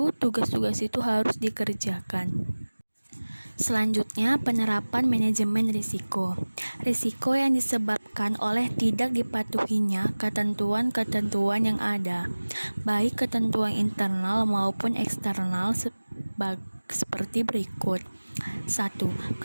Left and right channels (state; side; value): inverted; both; correlation -1.00